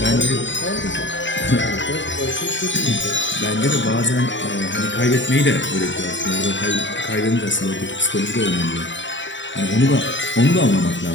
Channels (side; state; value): right; late; 0.54 ms